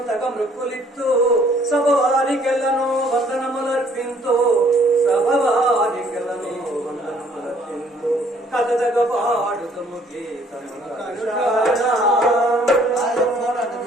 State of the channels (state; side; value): normal; both; correlation 0.61